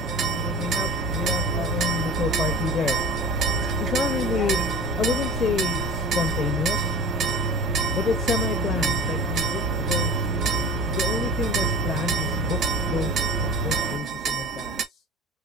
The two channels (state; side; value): normal; both; correlation 0.37